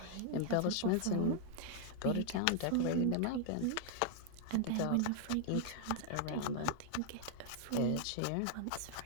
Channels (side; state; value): both; different; correlation 0.00